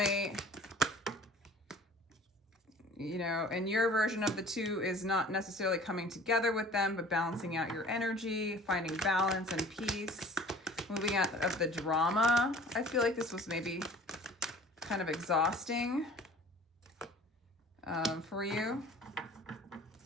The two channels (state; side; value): normal; both; correlation 0.47